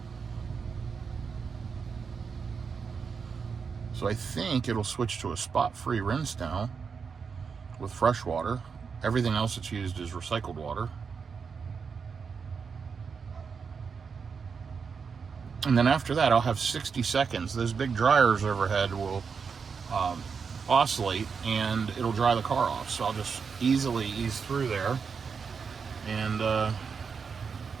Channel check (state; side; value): quieter; left; 5.8 dB